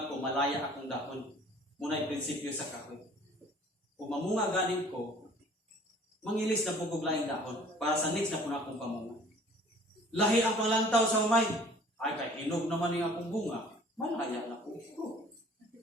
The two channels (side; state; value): both; normal; correlation 0.51